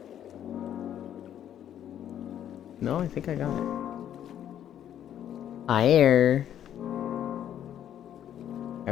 No, I think I got it. Fire. I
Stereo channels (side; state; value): right; quieter; 10.4 dB